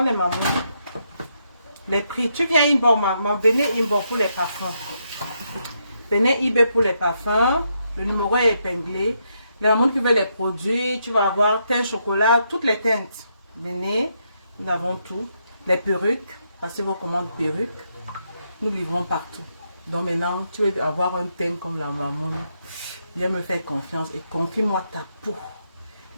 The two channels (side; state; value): both; inverted; correlation -0.79